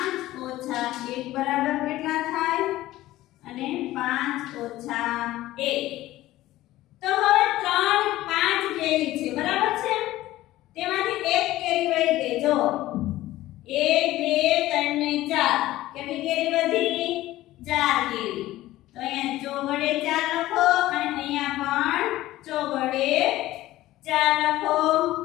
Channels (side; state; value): right; quieter; 15.9 dB